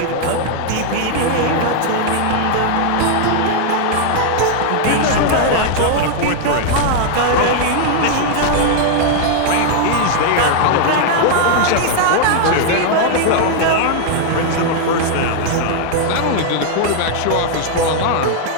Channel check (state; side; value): different; both; correlation 0.00